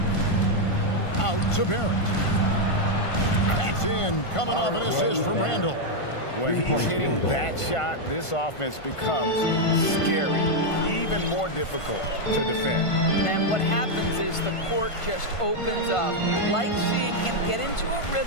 Out to Barrett. That's in. Coming off an assist from Randall. When he's hitting that shot, this offense becomes scary, even more difficult to defend. And what happens is the court just opens up. You like seeing him get into a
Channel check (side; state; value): right; late; 1.5 ms